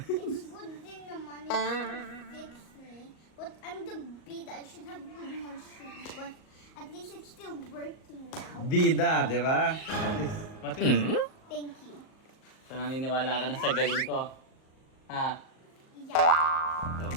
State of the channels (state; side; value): late; right; 38 ms